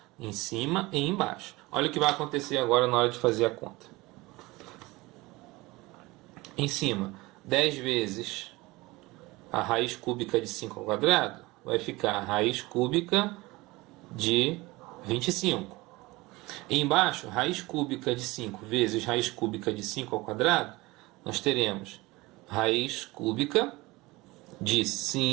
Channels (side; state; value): left; quieter; 21.6 dB